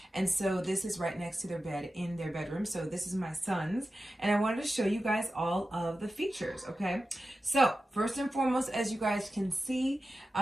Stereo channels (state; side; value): normal; both; correlation 0.93